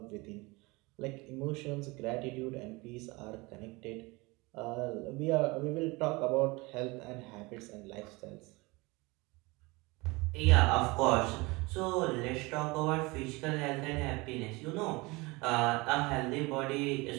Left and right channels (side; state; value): left; quieter; 24.3 dB